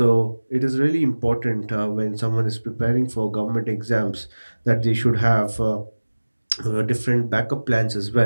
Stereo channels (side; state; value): both; inverted; correlation -1.00